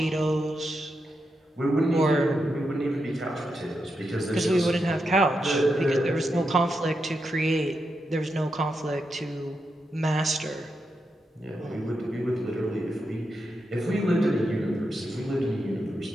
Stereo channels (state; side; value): normal; both; correlation 0.85